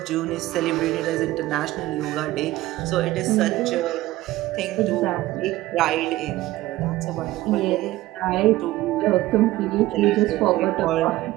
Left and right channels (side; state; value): left; quieter; 17.0 dB